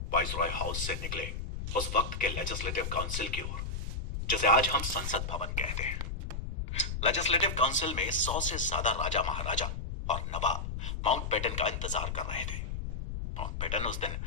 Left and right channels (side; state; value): left; noise; rumble, 4 dB below the sound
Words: वाइसरॉय हाउस से निकले उस वक्त के लेजिस्लेटिव काउंसिल की ओर, जिसे आज हम संसद भवन कहते हैं। लेजिस्लेटिव काउंसिल में 100 से ज्यादा राजा, महाराजा और नवाब माउंटबेटन का इंतजार कर रहे थे। माउंटबेटन उस दिन